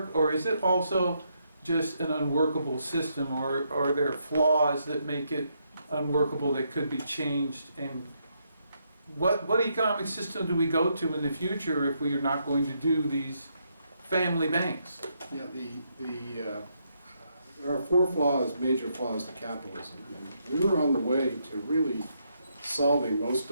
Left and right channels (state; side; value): inverted; both; correlation -0.77